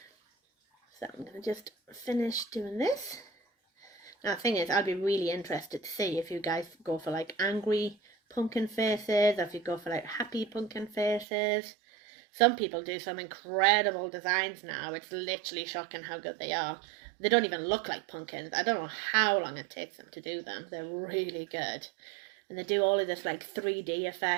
So I'm going to just finish doing this. Now the thing is, I'd be really interested to see if you guys go for like angry pumpkin faces, or if you go for like happy pumpkin faces. Some people do some incredible designs now. It's literally shocking how good they are. They don't even look like pumpkins. I don't know how long it takes them to do them. They're really good. And they do all of this like 3D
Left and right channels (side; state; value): left; drops out; at 11.2 s